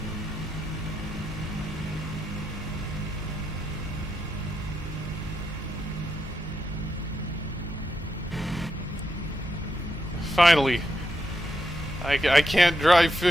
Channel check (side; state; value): both; normal; correlation 0.84